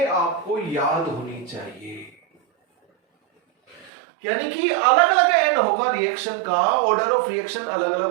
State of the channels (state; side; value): drops out; left; at 3.9 s